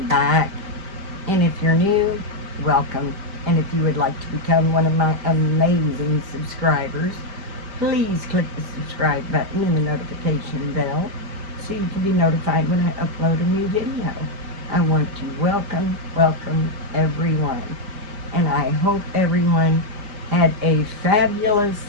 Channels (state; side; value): late; left; 5.0 ms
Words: back. And if you're new, welcome. And if you would like to become one of my amazing subscribers, please click the subscribe button and the notification bell so you can be notified when I upload a new video. I want to welcome everyone. And I hope everyone had a fabulous